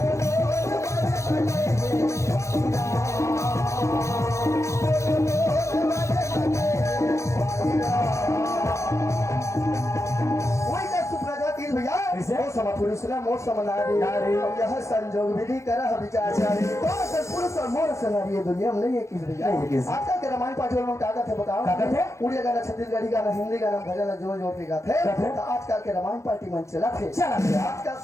वही का सुप्रजा तीन भैया कैसे? ओ सम पुरुष न मोर सम नारी नारी। यह संजोग विधि करह विचारचारी कौन सा पुरुष और मोर से नारी ये दुनिया में नहीं है किस भैया नहीं है किस। आजकल के रामायण पाठ में क्या कहते बताओ क्या कहते? उड़िया गाना छत्तीसगढ़ी गाना हिंदी गाना भजन जोर जोर के गाते कहते? तो आजकल के रामायण पार्टी मन चला थे चला थे। आजकल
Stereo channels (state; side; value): late; right; 0.14 ms